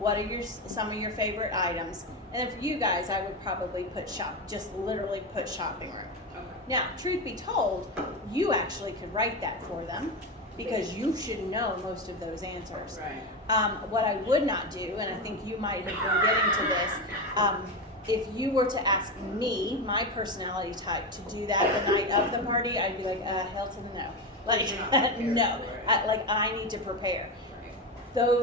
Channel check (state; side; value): normal; both; correlation 0.16